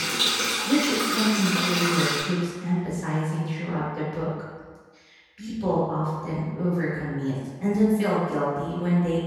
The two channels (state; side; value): identical; both; correlation 1.00